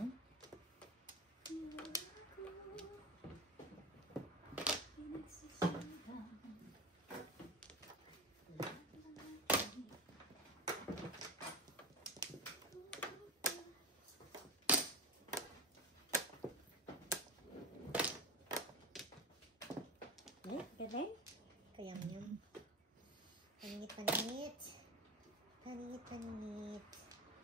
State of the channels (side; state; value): both; normal; correlation 0.23